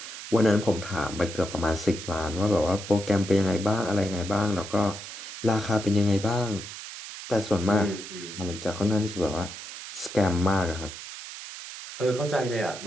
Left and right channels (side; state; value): right; noise; hiss, 11 dB below the sound